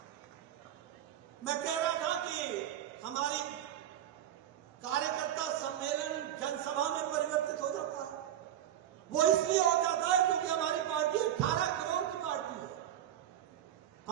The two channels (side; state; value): left; quieter; 11.1 dB